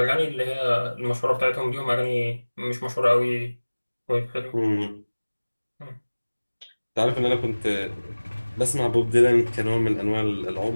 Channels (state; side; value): inverted; both; correlation -1.00